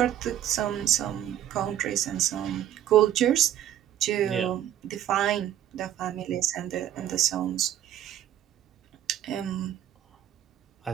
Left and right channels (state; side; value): quieter; left; 11.4 dB